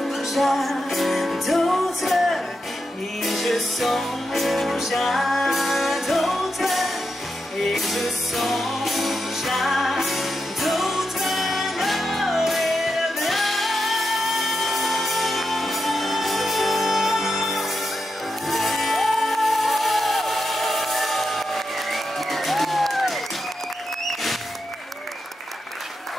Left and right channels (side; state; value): both; normal; correlation 0.87